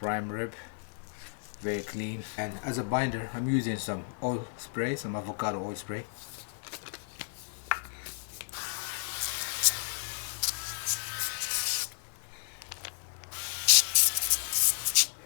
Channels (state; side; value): silent; right; digital silence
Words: rib, very clean. And as a binder, I'm using some oil spray, some avocado oil spray.